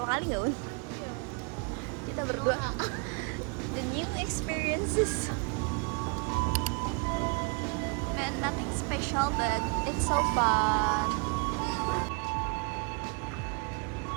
kali nggak, Un? Kita berdua. The new experiences. Man, nothing special but it's so fun.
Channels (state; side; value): quieter; left; 34.7 dB